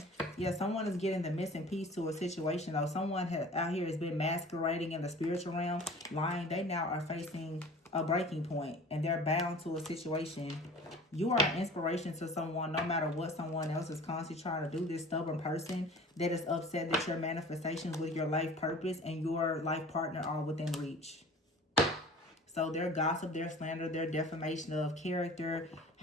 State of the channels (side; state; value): both; normal; correlation 0.43